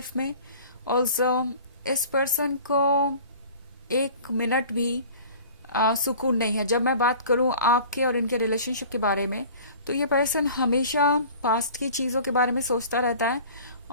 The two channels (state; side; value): inverted; both; correlation -0.44